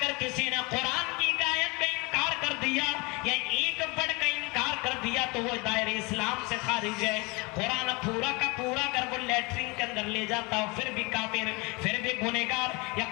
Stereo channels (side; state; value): right; quieter; 27.2 dB